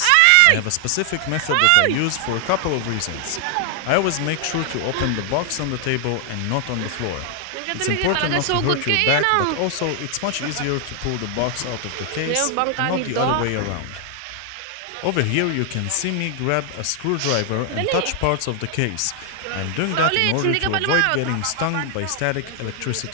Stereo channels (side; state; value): both; different; correlation 0.00